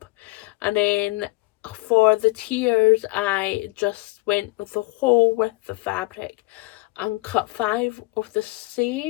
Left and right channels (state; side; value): quieter; right; 21.5 dB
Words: and then for the tiers I just went with the whole width of fabric and cut 5 of the